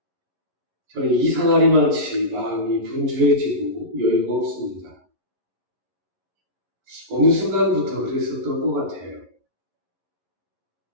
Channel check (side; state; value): left; late; 11 ms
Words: 저는 이상하리만치 마음이 분주해지고 여유가 없습니다. 어느 순간부터 그랬었던 것 같아요.